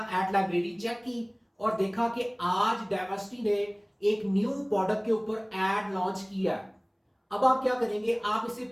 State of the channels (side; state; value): both; identical; correlation 1.00